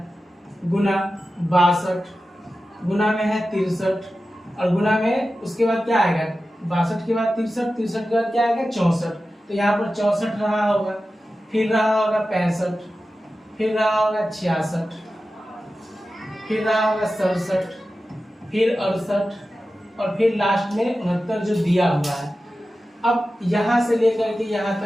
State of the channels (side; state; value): both; normal; correlation 0.93